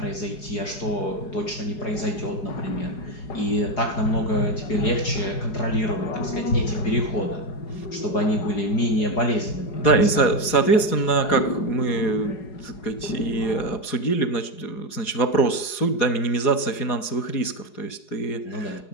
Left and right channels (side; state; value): right; late; 4.8 ms